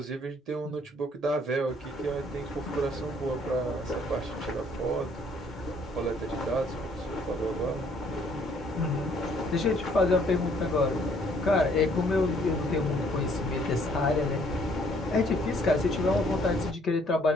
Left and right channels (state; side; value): normal; both; correlation 0.63